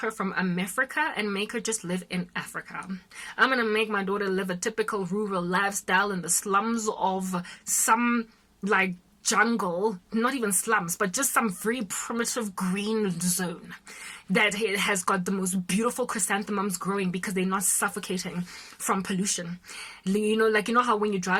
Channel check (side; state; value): both; identical; correlation 1.00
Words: from America and make her just live in Africa. I'm going to make my daughter live a typical rural lifestyle in the slums of some like jungle, not even slums, but just some very primitive green zone that has got the most beautiful chrysanthemums growing because they're not suffocating from pollution. You know how when you